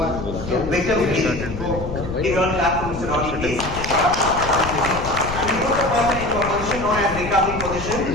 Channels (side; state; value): left; noise; rumble, 8 dB below the sound